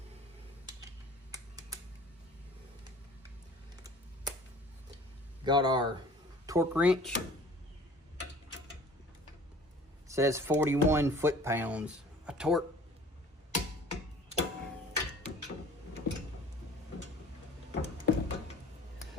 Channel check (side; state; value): both; normal; correlation 0.47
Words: Got our torque wrench. It says 41 foot-pounds of torque.